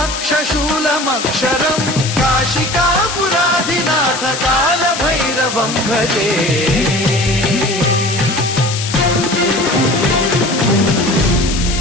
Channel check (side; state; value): left; noise; hiss, 6 dB below the sound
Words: काशिकापुराधिनाथ कालभैरवं भजे